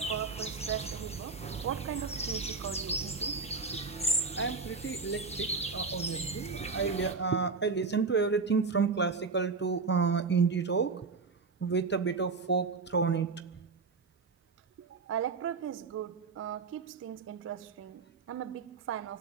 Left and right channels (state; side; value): quieter; left; 4.6 dB